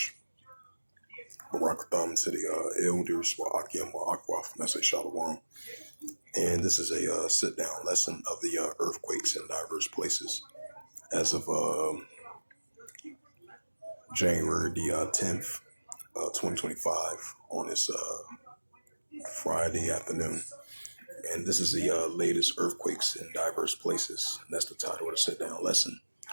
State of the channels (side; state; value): both; inverted; correlation -1.00